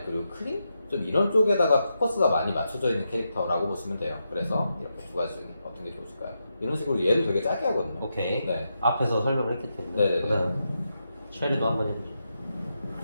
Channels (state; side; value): inverted; both; correlation -0.85